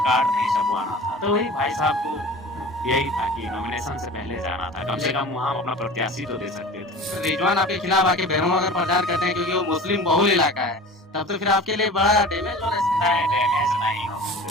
कार्ड नहीं छपवाना था। तो वही भाई साहब को यही था कि नॉमिनेशन से पहले जाना था, कम से कम वहाँ अपना प्रत्याशी तो दे सकते थे। रिजवान आपके खिलाफ आके बेरहम अगर प्रचार करते हैं क्योंकि वो मुस्लिम बहुल इलाका है, तब तो फिर आपके लिए बड़ा डैमेज होना है। नहीं, डैमेज नहीं हो।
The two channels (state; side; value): normal; both; correlation 0.38